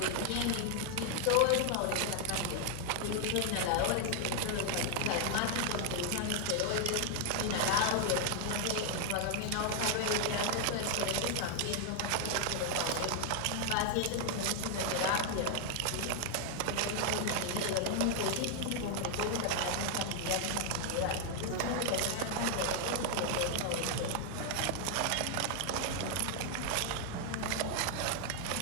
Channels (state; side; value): different; both; correlation 0.00